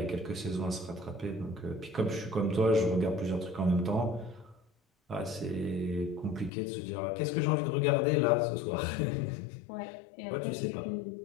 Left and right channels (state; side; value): drops out; right; at 6.5 s